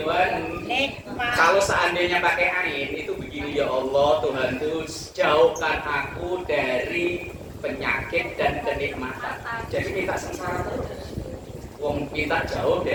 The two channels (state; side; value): identical; both; correlation 1.00